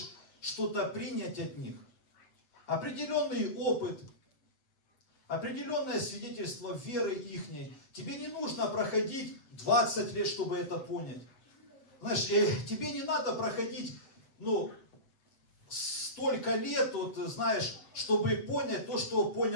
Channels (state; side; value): late; right; 7.9 ms